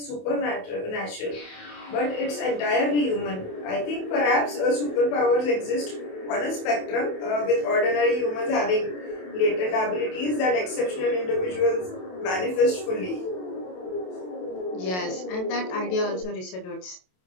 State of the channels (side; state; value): right; late; 27 ms